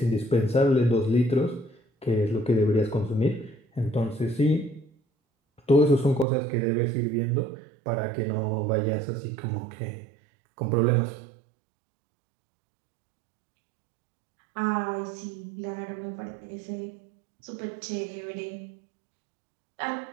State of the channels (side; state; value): left; drops out; at 6.2 s